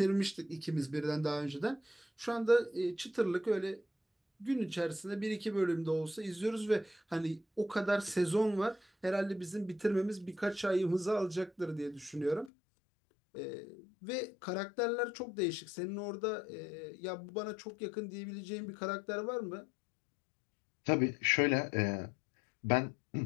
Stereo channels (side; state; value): right; drops out; at 12.5 s